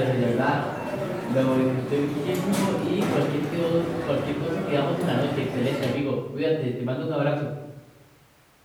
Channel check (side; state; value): both; identical; correlation 1.00